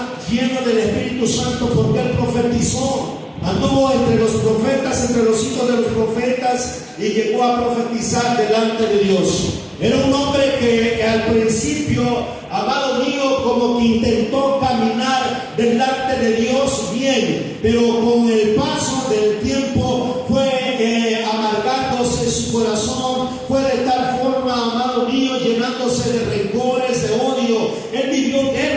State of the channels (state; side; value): identical; both; correlation 1.00